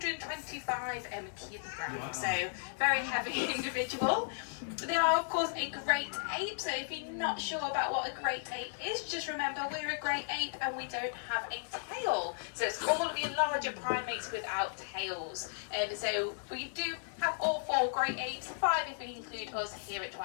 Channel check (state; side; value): silent; right; 54 dB below the other